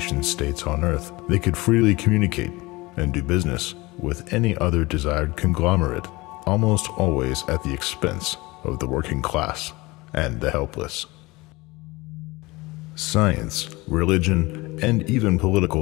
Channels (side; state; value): right; quieter; 22.2 dB